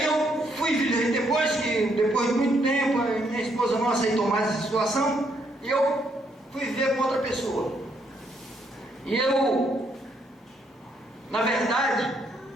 eu fui, depois de muito tempo, minha esposa não aceitou mais essa situação, e eu fui viver com outra pessoa. E eu, na verdade,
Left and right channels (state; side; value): normal; both; correlation 0.73